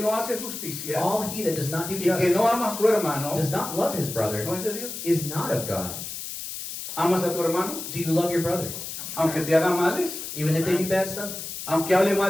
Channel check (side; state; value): left; noise; hiss, 8 dB below the sound